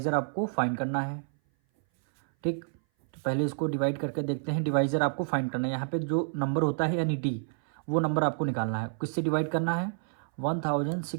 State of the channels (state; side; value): silent; left; 57 dB below the other